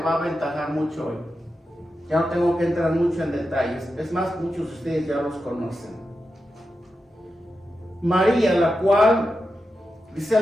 va a aventajar mucho hoy. Ya no tengo que entrar mucho en detalles. Es más, muchos de ustedes ya los conocen. María, la cual dice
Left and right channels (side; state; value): both; normal; correlation 0.89